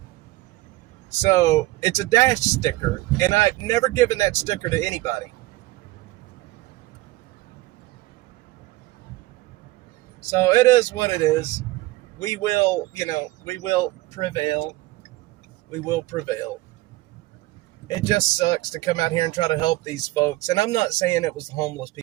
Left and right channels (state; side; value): quieter; left; 19.0 dB